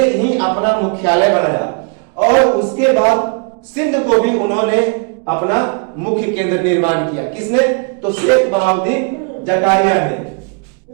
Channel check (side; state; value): left; quieter; 38.4 dB